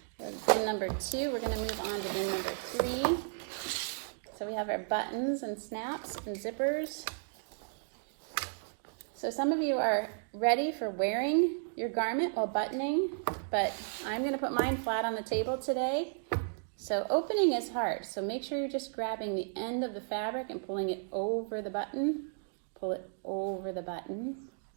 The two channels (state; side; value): silent; left; digital silence